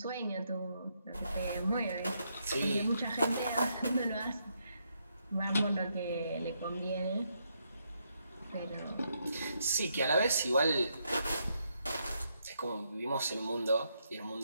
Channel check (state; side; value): inverted; both; correlation -0.78